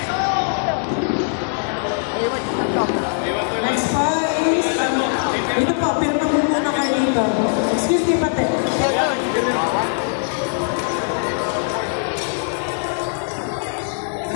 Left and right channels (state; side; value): silent; right; digital silence